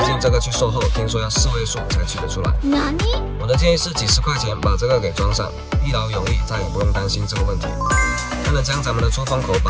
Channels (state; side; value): identical; both; correlation 1.00